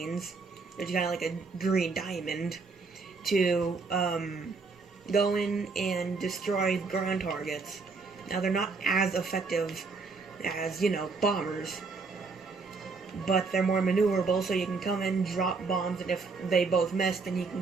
which is kind of like a green diamond, to go in and destroy ground targets. Now, they're not as effective as, you know, bombers, but they're more maneuverable, so you can come in, drop bombs, and if they both miss, then you can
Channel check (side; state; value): left; quieter; 4.3 dB